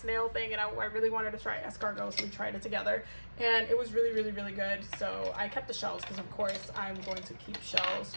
thing, and I really wanted to try escargot, so we tried it together, and it was really, really, really good. So I kept the shells because of course I'm going to keep shells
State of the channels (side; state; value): both; inverted; correlation -1.00